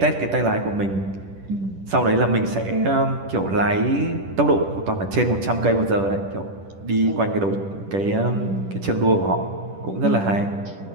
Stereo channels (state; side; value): late; left; 10 ms